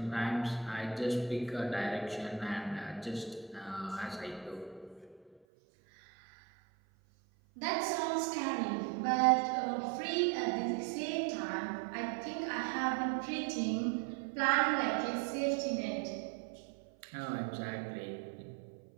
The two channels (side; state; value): left; drops out; at 5.4 s